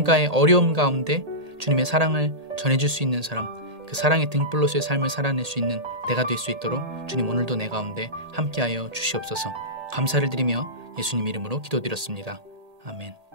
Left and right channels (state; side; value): late; left; 1.8 ms